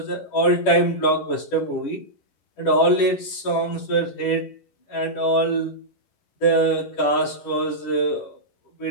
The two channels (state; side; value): late; right; 10 ms